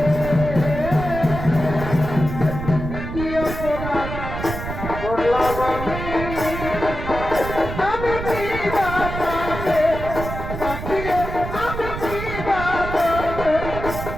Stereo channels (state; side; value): noise; right; rumble, 7 dB below the sound